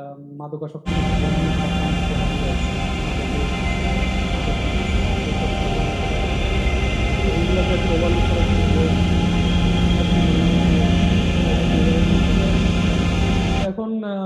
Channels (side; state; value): both; identical; correlation 1.00